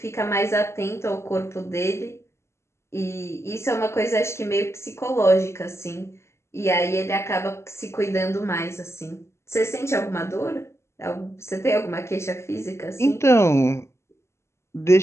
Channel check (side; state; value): right; late; 0.13 ms